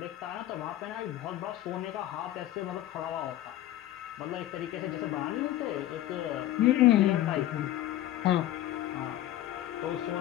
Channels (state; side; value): quieter; right; 13.8 dB